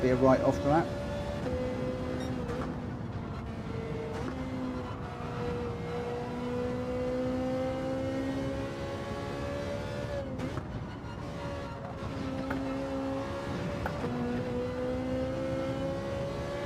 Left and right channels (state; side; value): identical; both; correlation 1.00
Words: a write-off lap.